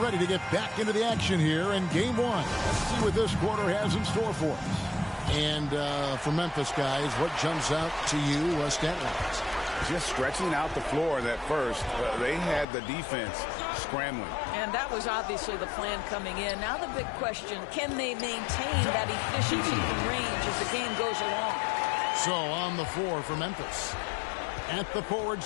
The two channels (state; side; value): drops out; right; at 12.7 s